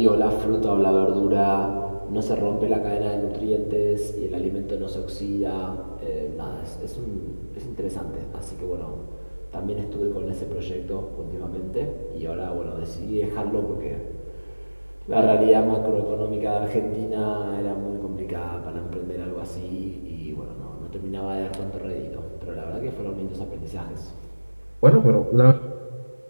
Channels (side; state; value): both; inverted; correlation -1.00